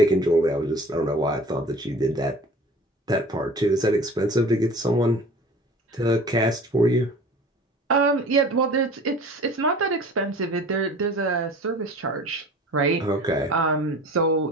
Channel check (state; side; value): normal; both; correlation 0.42